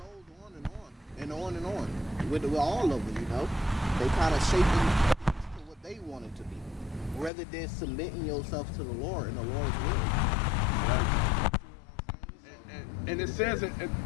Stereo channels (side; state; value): right; drops out; at 7.3 s